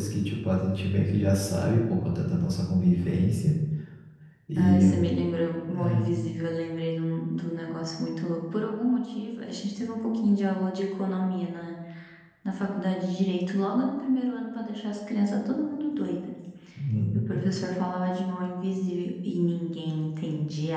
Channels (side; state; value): both; identical; correlation 1.00